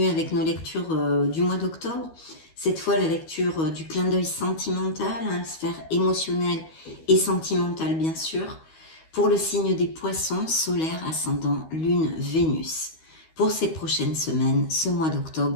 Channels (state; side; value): late; right; 13 ms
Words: avec nos lectures du mois d'octobre. Cette fois, la lecture du clin d'œil sentimental, sphère émotionnelle et sentimentale, bien sûr, pour le signe des poissons, solaire, ascendant, lune, Vénus, pour ces prochaines semaines, ce mois